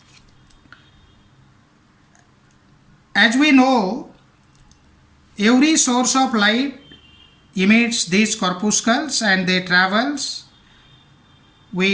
As we know, every source of light emits these corpuscles and they travels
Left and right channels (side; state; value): both; identical; correlation 1.00